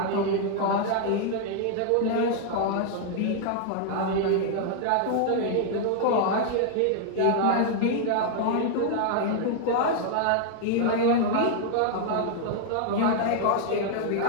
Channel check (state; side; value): different; both; correlation 0.00